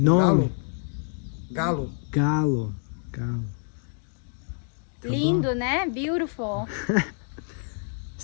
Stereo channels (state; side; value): silent; right; 60 dB below the other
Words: Galo. Galo. Tá Lindo, bom? né? Beautiful.